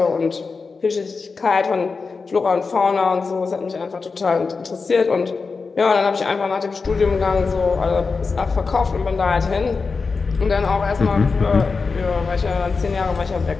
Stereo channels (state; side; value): quieter; right; 4.6 dB